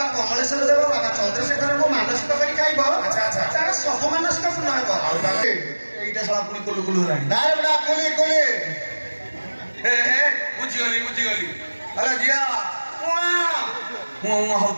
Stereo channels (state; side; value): inverted; both; correlation -1.00